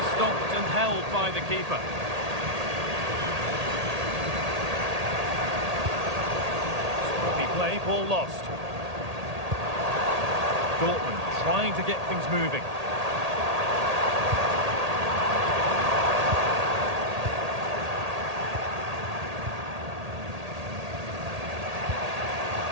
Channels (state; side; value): late; left; 1.8 ms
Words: stopped and held by the keeper. Scruffy play, ball lost. Dortmund trying to get things moving.